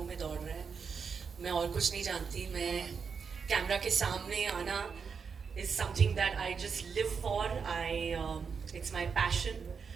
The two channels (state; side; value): quieter; left; 5.9 dB